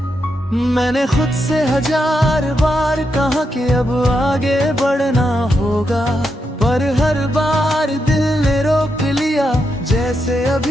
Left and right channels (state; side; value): normal; both; correlation 0.83